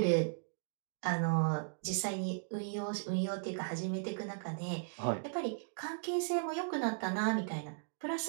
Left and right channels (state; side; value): silent; left; digital silence